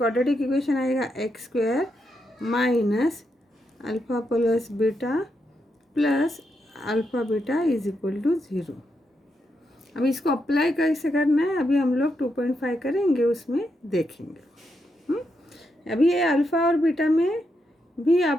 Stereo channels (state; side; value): normal; both; correlation 0.83